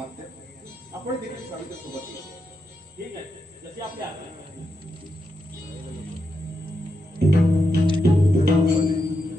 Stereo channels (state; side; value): normal; both; correlation 0.85